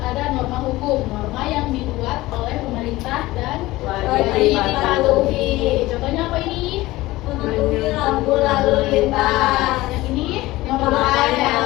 ada norma hukum, norma yang dibuat oleh pemerintah dan Wajib dipatuhi. Contohnya apa ini? Mematuhi lampu lalu lintas. Yang ini Memakai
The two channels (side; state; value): right; quieter; 18.5 dB